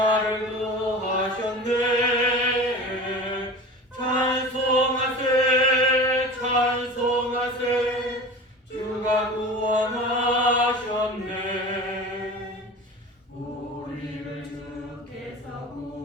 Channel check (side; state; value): both; normal; correlation 0.35